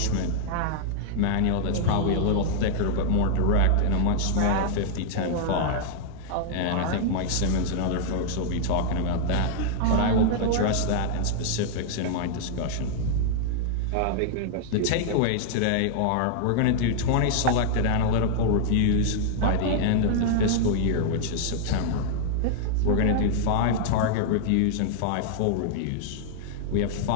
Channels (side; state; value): both; different; correlation -0.01